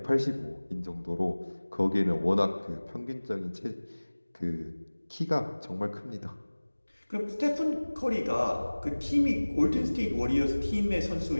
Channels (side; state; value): both; inverted; correlation -1.00